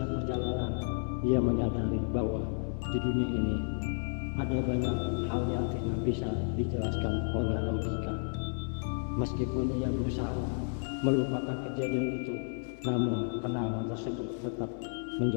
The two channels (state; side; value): silent; right; 56 dB below the other